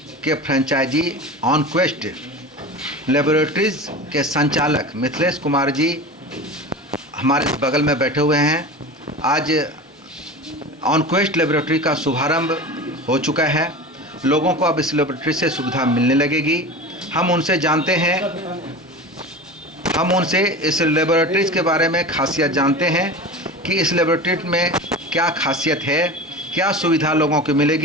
के फ्रेंचाइजी ऑनक्वेस्ट लेबोरेटरीज के संचालक मिथिलेश कुमार जी हमारे बगल में बैठे हुए हैं। आज ऑनक्वेस्ट लेबोरेटरी का शुभारंभ हो चुका है। लोगों को अब इस लेबोरेटरी से सुविधा मिलने लगेगी। हम उनसे जानते हैं, हम उनसे इस लेबोरेटरीज के बारे में खासियत जानते हैं कि इस लेबोरेटरी में क्या खासियत है, क्या सुविधा लोगों को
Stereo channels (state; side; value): normal; both; correlation 0.31